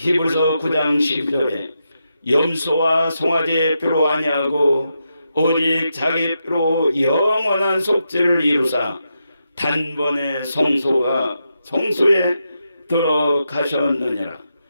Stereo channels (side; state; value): both; inverted; correlation -0.85